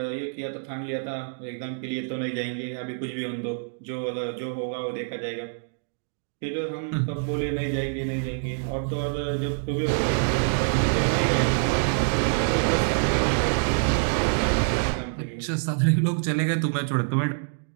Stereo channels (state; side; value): silent; left; digital silence